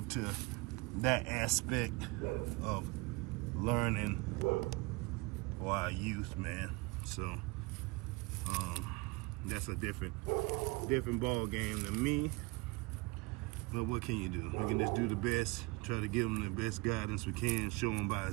to that aspect of learning for our youth, man. So that's a different ball game than me. But what can you do? We can just do the best, try to give them the best guidance we can, show them by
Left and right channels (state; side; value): quieter; left; 25.5 dB